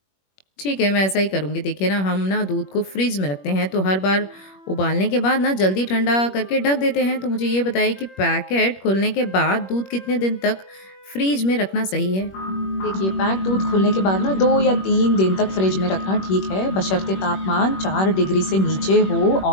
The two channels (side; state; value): right; late; 21 ms